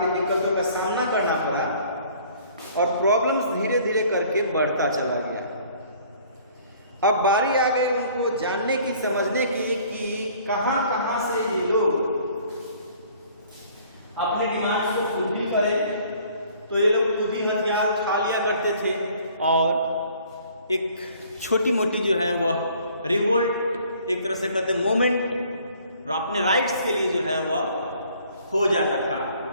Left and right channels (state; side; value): inverted; both; correlation -0.56